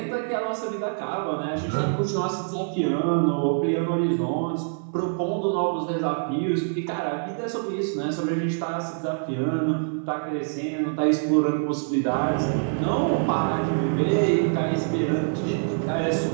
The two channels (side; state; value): left; silent; 58 dB below the other